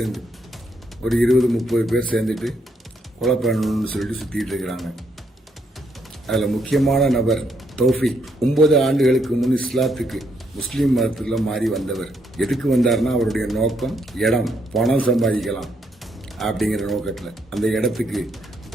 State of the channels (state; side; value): normal; both; correlation 0.75